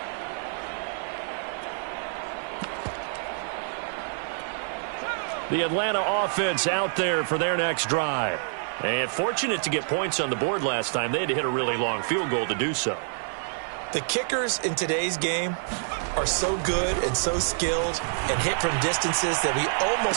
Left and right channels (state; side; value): silent; left; 56 dB below the other